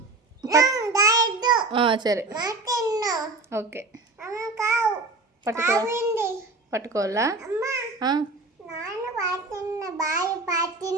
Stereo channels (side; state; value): left; quieter; 3.3 dB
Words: సరే, ఓకే. పట్టుకోవాలా?